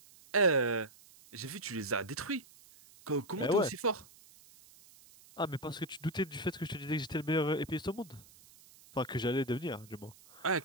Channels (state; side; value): noise; right; hiss, 24 dB below the sound